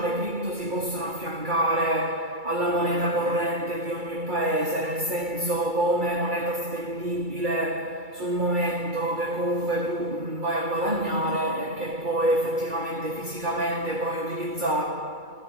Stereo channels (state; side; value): late; left; 2.3 ms